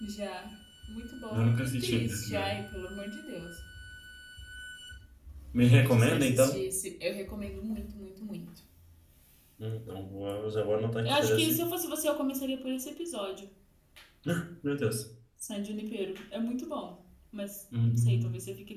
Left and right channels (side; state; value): both; identical; correlation 1.00